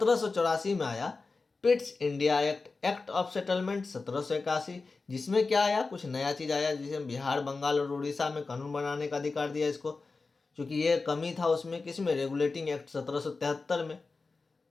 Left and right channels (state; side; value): quieter; right; 4.0 dB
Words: में आया Pitt's India act, act of settlement 1781, जिसमें क्या आया, कुछ नया चीज आया, जिसमें बिहार, बंगाल और उड़ीसा में कानून बनाने का अधिकार दिया इसको, क्योंकि ये कमी था उसमें, किसमें, रेगुलेटिंग एक्ट 1773 में।